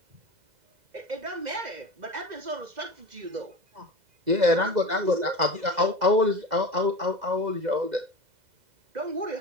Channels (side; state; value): left; late; 2.0 ms